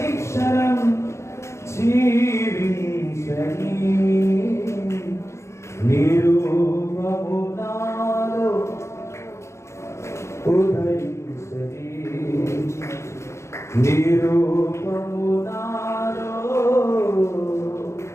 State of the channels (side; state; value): right; late; 0.13 ms